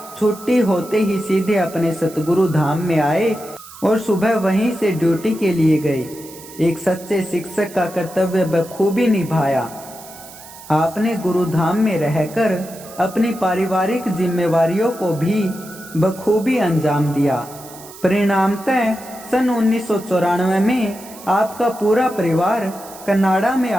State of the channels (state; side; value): noise; right; hiss, 18 dB below the sound